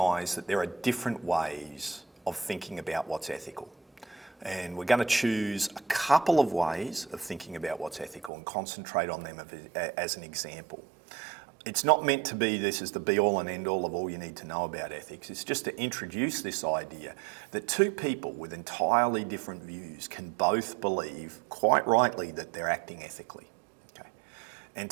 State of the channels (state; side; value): drops out; left; at 8.3 s